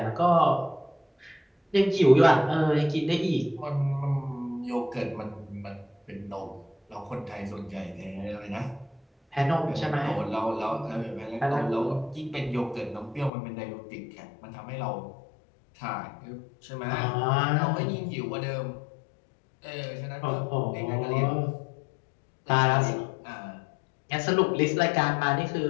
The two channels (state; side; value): drops out; right; at 13.3 s